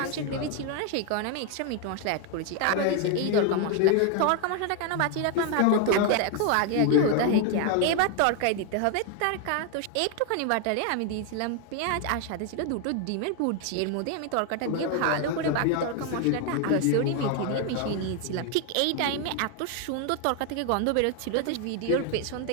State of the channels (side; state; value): both; different; correlation 0.01